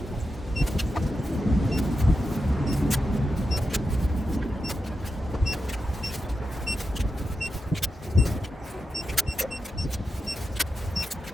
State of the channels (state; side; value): normal; both; correlation 0.88